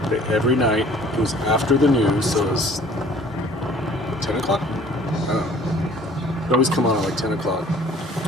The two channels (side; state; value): both; normal; correlation 0.53